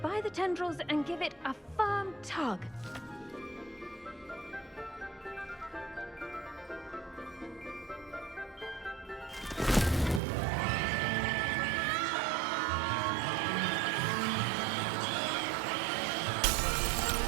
by the tendrils and give it a firm tug.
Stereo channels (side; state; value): left; drops out; at 10.2 s